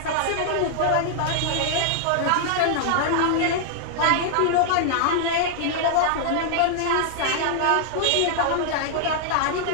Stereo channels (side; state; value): both; different; correlation -0.01